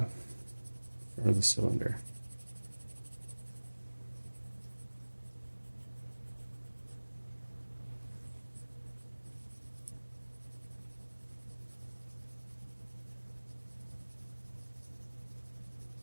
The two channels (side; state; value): both; inverted; correlation -1.00